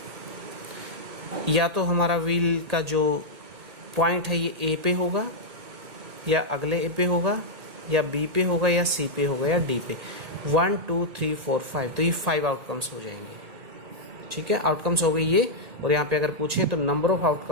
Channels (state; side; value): late; left; 1.8 ms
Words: या तो हमारा व्हील का जो पॉइंट है ये ए पे होगा, या अगले ए पे होगा, या बी पे होगा, या सी पे होगा, या डी पे। 1 2 3 4 5, तो ये 5 आउटकम्स हो जाएंगे। ठीक है, आउटकम्स हो गई ये। और यहाँ पे अगर पूछे तो नंबर ऑफ